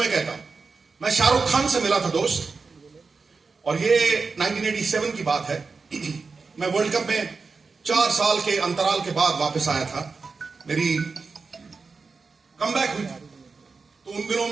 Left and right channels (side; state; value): left; quieter; 4.5 dB